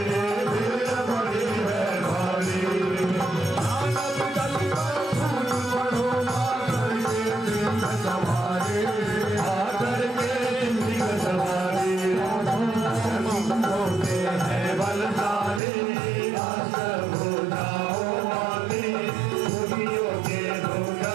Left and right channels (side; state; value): left; drops out; at 15.6 s